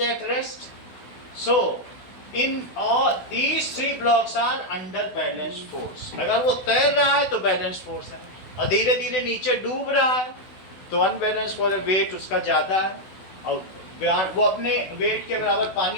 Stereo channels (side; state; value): right; late; 16 ms